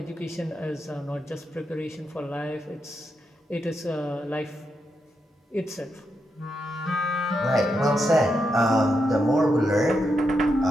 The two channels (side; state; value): both; normal; correlation 0.84